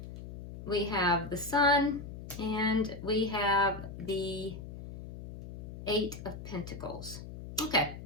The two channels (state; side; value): noise; left; hum, 10 dB below the sound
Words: We have the Sun, and we have the 8 of Pentacles. Okay.